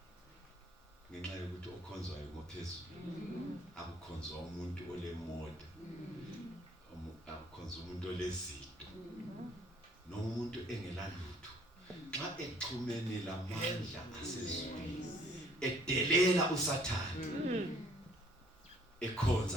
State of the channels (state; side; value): normal; both; correlation 0.59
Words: ngenxa yokuthi okhonzwayo ngophezulu akukhonzwa umuntu olemoda akukhonzwa umuntu olezito nomuntu engelalutho xa exhumene lamandla asezulwini edelela uSathane